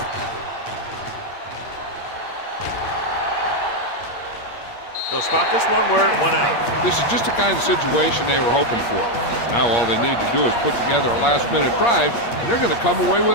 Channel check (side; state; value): right; late; 8.5 ms